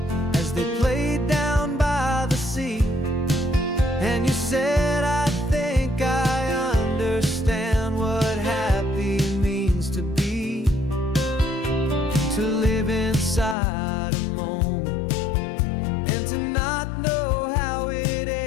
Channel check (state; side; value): drops out; right; at 13.6 s